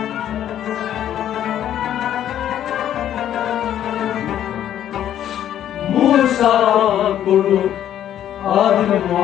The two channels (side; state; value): right; quieter; 10.9 dB